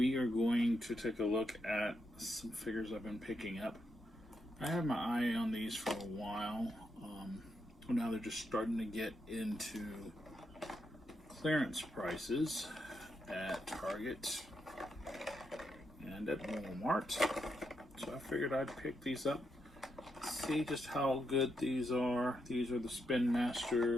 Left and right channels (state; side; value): normal; both; correlation 0.82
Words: are going to take a look at some figures I've been picking up. I had my eye on these for a while. Now they're just starting to get into clearance prices at Target and at Walmart. So I figured I'd pick these up. See just how good these are. These are the